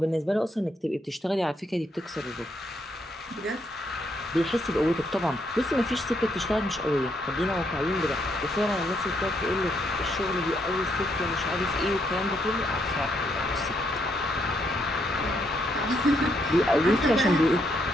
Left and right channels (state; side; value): normal; both; correlation 0.75